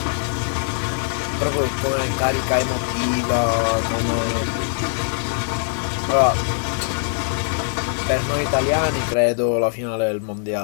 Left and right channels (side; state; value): right; silent; 64 dB below the other